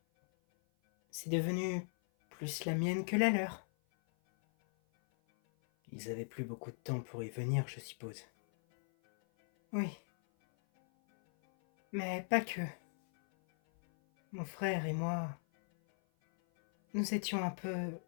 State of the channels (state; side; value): silent; right; 52 dB below the other